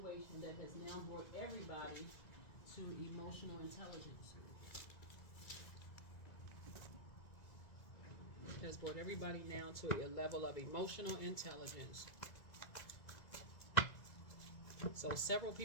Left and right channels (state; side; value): late; right; 1.9 ms